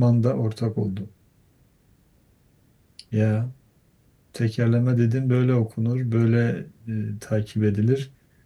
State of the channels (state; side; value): identical; both; correlation 1.00